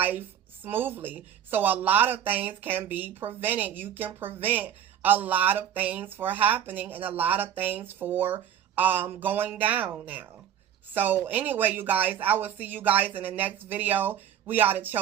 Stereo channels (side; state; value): left; quieter; 9.8 dB